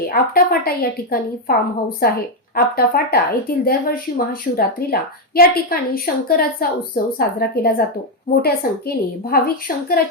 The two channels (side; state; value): both; normal; correlation 0.03